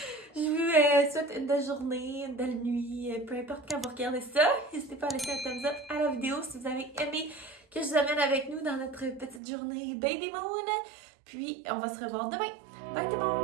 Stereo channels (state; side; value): drops out; left; at 9.4 s